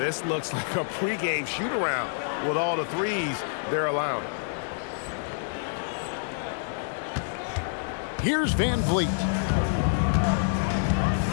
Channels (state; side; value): silent; right; digital silence